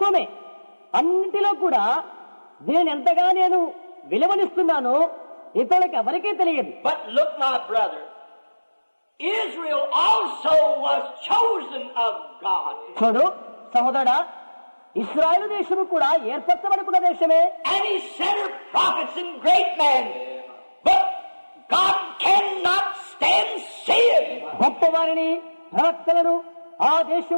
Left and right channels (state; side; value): inverted; both; correlation -1.00